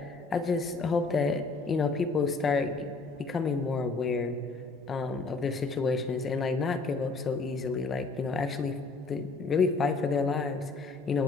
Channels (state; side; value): quieter; right; 3.9 dB